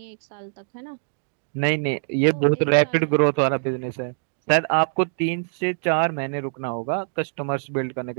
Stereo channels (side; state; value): left; silent; digital silence